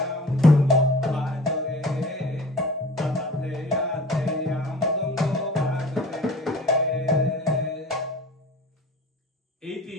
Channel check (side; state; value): both; normal; correlation 0.43